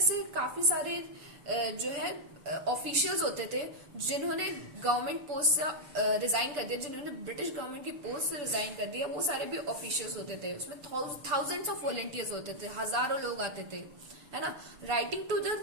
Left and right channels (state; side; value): late; left; 6.8 ms